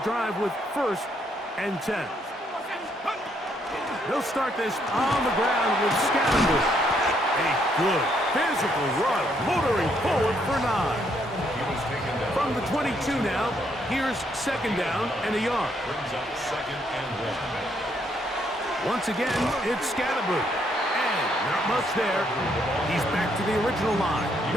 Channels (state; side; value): normal; both; correlation 0.72